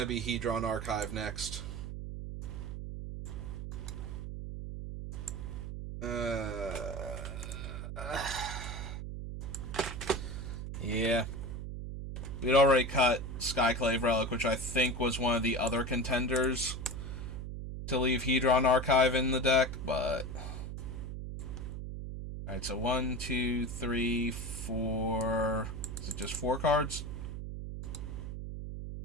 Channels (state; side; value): noise; right; hum, 6 dB below the sound